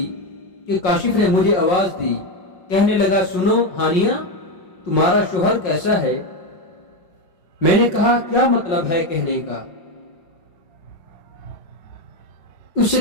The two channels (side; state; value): right; late; 5.5 ms